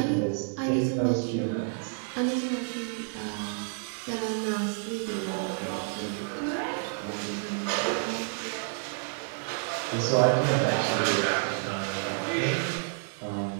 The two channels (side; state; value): left; silent; 58 dB below the other